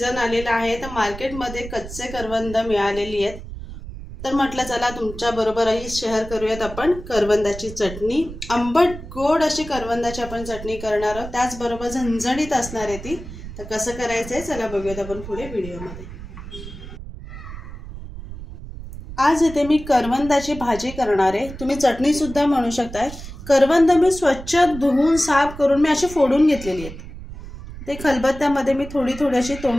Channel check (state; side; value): noise; right; rumble, 12 dB below the sound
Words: आलेला आहे, तर मार्केटमध्ये कच्चे करवंद मिळालेली आहेत। तर म्हटलं चला तुमच्या बरोबरही शेअर करूयात आपण करवंदाची चटणी। आंबट गोड अशी करवंदाची आपण चटणी करणार आहोत, त्याचबरोबर झणझणीत असणार आहे ती। तर कसं करायचंय चला बघूयात आपण पुढे व्हिडिओमध्ये। आज इथे मी करवंदाची भाजी करणार आहे, तुम्ही चटणी सुद्धा म्हणू शकताय। करवंद मी स्वच्छ धुवून साफ करून मी अशी फोडून घेतलेली आहेत। ते खलबत्त्यामध्ये मी थोडी अशी